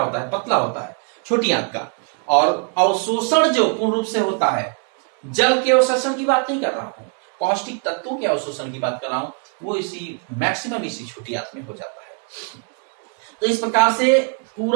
है, पतला होता है छोटी आंत का। और अवशोषण जो पूर्ण रूप से होता है, जल के अवशोषण की बात नहीं कर रहा हूं, पौष्टिक तत्वों के अवशोषण की बात कर रहा हूं, वो इसी मैक्सिमम इसी छोटी आंत में हो जाता है। तो इस प्रकार से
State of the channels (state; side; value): quieter; left; 39.9 dB